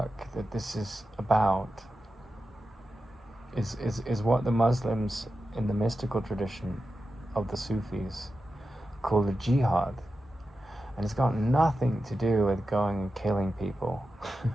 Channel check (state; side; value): normal; both; correlation 0.91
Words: that this is about is what the Muslims in the mystical tradition of the Sufis call the jihad. And it's got nothing to do with going and killing people. It's